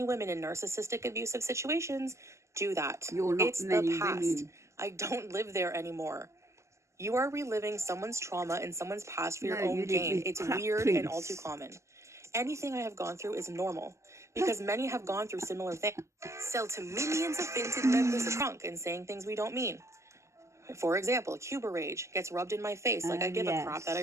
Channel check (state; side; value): late; left; 0.13 ms